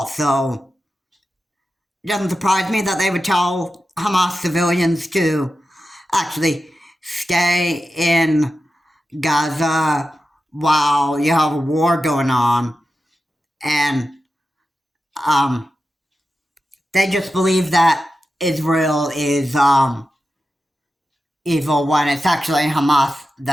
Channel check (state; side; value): normal; both; correlation 0.92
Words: so it doesn't surprise me that they would tell Hamas civilians to actually stay in Gaza while you have a war going on, and they just believe that Israel is evil when it's actually Hamas